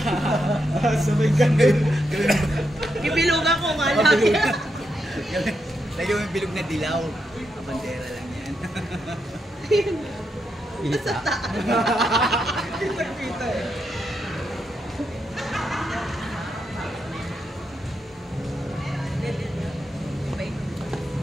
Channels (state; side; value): normal; both; correlation 0.83